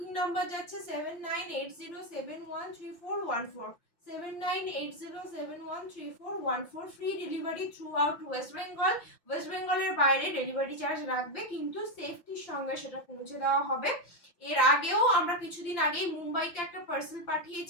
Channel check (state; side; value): late; right; 5.8 ms